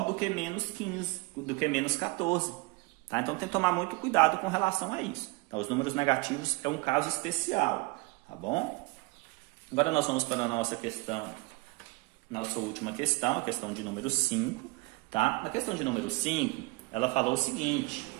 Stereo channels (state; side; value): quieter; left; 24.4 dB